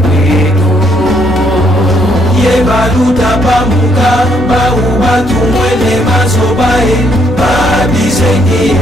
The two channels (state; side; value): normal; both; correlation 0.71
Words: kweto yebaluta pamuka baubatumwele mazobae babizengie